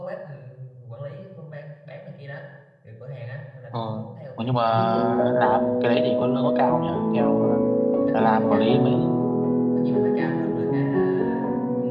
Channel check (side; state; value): both; identical; correlation 1.00